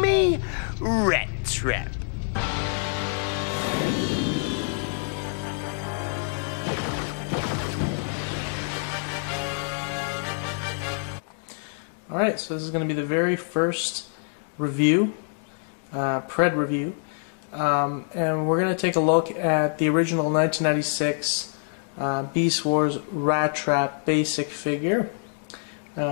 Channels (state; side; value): silent; right; 61 dB below the other